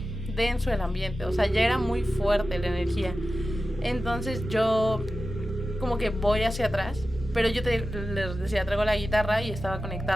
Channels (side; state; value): both; normal; correlation 0.93